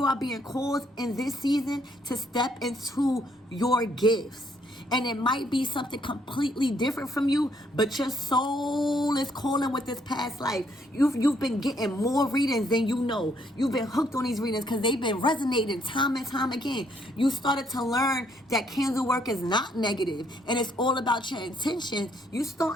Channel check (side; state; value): both; normal; correlation 0.69